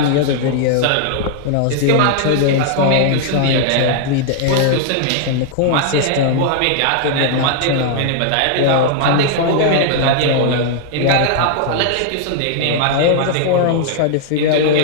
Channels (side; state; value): both; different; correlation -0.01